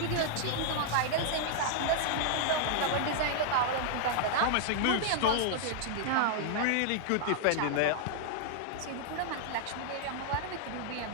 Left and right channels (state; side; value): different; both; correlation -0.01